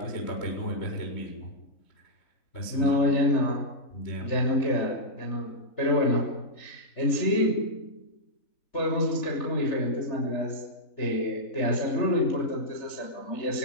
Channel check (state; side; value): late; right; 3.4 ms